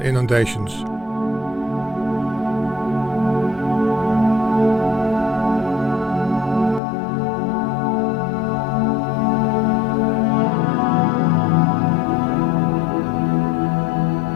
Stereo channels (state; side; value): drops out; right; at 6.8 s